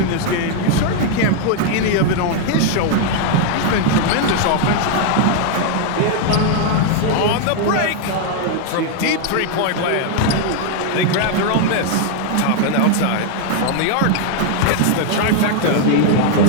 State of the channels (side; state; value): both; different; correlation 0.00